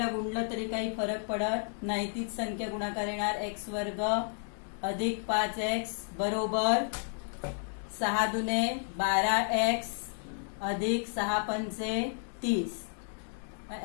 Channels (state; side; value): silent; right; 56 dB below the other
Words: गुणलं तरी काही फरक पडत नाही, तीच संख्या गुणाकार येणार. x वर्ग अधिक 5x बरोबर 6 दुने 12x अधिक 6 पंचे 30.